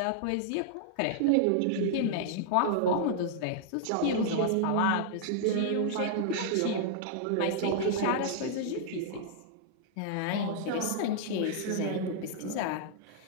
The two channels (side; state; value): both; different; correlation -0.01